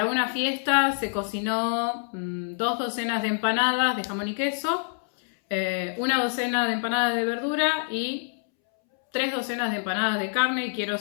una fiesta se cocinó 2 docenas de empanadas de jamón y queso, 1 docena de empanadas de verdura y 3 docenas de empanadas de carne, y quiero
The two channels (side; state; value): right; silent; 61 dB below the other